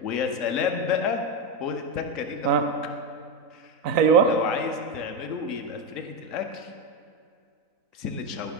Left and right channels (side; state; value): left; late; 3.9 ms